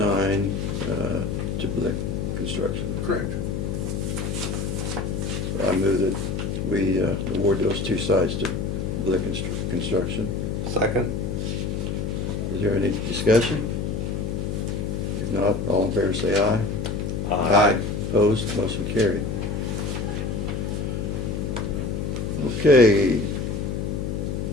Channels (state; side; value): noise; left; hum, 2 dB below the sound